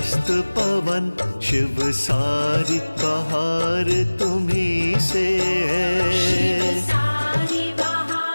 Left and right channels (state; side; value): inverted; both; correlation -1.00